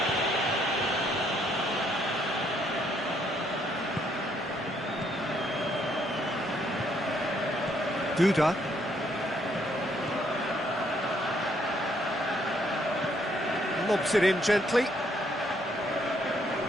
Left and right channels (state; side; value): normal; both; correlation 0.70